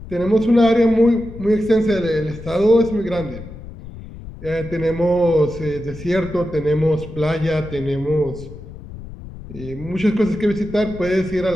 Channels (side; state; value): left; noise; rumble, 14 dB below the sound